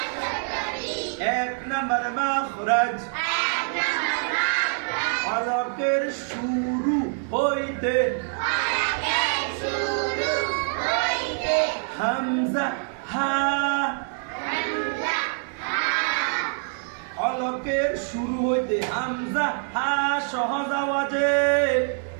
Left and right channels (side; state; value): left; silent; 57 dB below the other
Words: 1 নম্বর মাখরাজ হলকের শুরু হইতে হামজা হা, হলকের শুরু হইতে হামজা হা সহজ আওয়াজে।